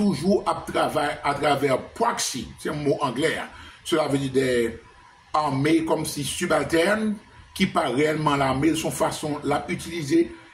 travaille à travers proxy, c'est un mot anglais. Hein. Cela veut dire des armées comme si subalternes, qui pas réellement l'armée, de son façon l'a utiliser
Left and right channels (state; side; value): identical; both; correlation 1.00